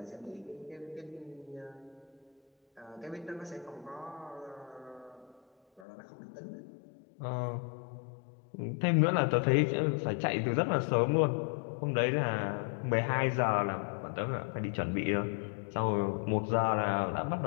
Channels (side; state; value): right; drops out; at 5.9 s